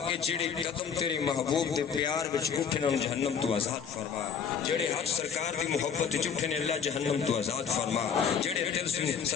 کے جڑے قدم تیرے محبوب دے پیار وچ اٹھن ان جہنم تو آزاد فرما جڑے حق سرکار دی محبت وچ اٹھن اللہ جہنم تو آزاد فرما جڑے دل سے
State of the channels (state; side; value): quieter; right; 6.8 dB